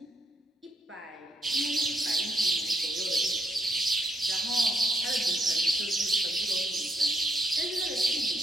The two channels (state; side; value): normal; both; correlation 0.76